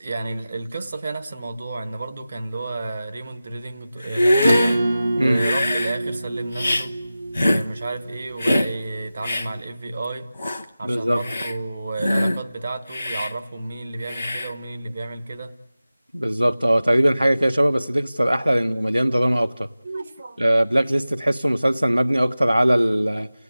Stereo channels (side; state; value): both; inverted; correlation -0.95